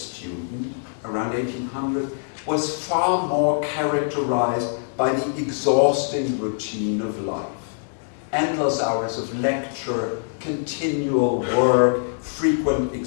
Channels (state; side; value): silent; right; digital silence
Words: around 1800 was far more characterized by the exhausting routine of life. Endless hours of lecture, continual work, frequent